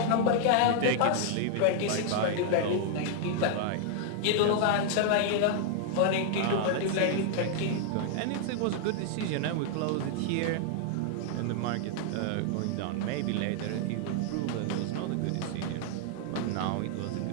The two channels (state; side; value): different; both; correlation 0.00